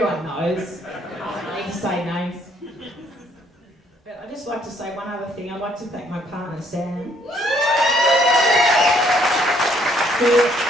knows. I don't need to say names. But I'd just like to say one other thing. I'd like to thank my partner, Sam. I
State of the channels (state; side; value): normal; both; correlation 0.66